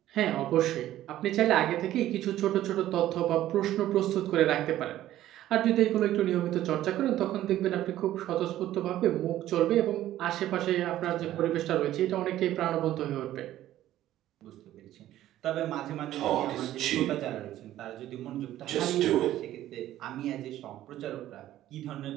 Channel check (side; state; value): left; quieter; 13.5 dB